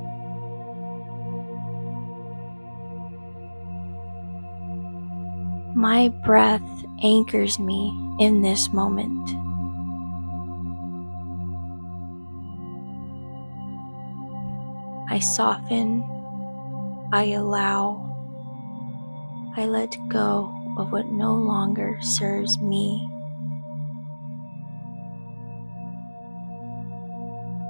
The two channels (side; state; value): both; inverted; correlation -1.00